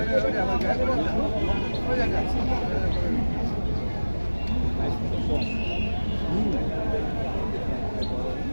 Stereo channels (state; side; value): inverted; both; correlation -1.00